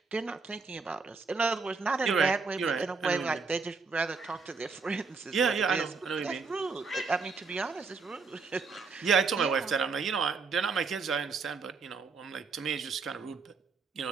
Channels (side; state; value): left; quieter; 4.7 dB